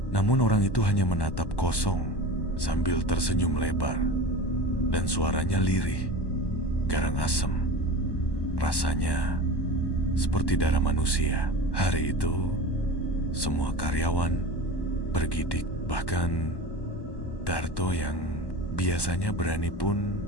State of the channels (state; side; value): late; right; 1.1 ms